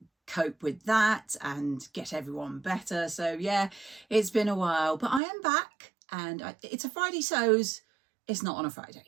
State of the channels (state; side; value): drops out; left; at 5.2 s